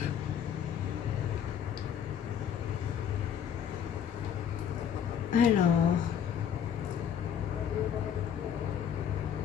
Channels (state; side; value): quieter; right; 8.6 dB